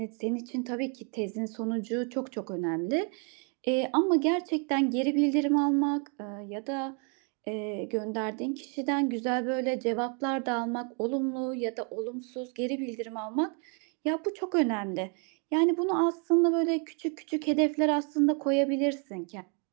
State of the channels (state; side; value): quieter; left; 38.2 dB